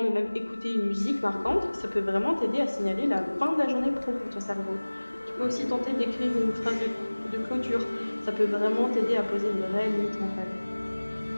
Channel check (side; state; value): both; inverted; correlation -1.00